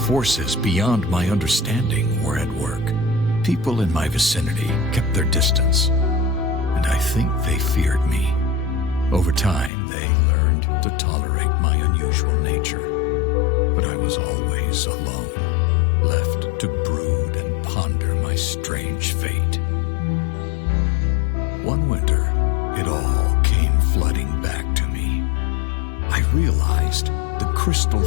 forces beyond my understanding were at work. People in my vicinity kept their distance, and I think they feared me. Over time, they learned to tolerate my unusual nature, but I was always alone, left to brood and ponder my strange fate. One winter, it all came flooding back to me. I realized the crystal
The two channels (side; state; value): right; drops out; at 9.7 s